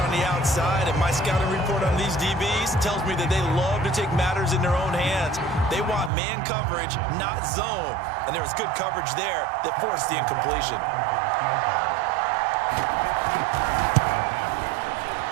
the outside, and my scouting report on these DBs tells me that they love to take matters in their own hands. They want man coverage, not zone. And there was good coverage there that forced the incompletion.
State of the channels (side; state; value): left; drops out; at 6.1 s